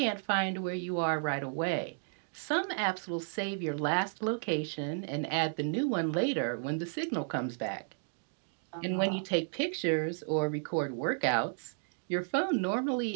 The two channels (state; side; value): silent; left; digital silence